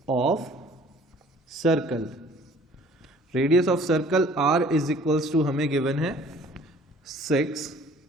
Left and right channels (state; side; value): normal; both; correlation 0.53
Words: of circle, radius of circle R is equals to हमें गिवन है 6